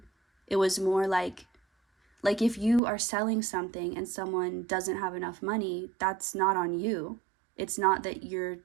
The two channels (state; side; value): drops out; left; at 2.8 s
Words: It was more like if you are selling something and someone doesn't have enough money, that's not on you. It's not that your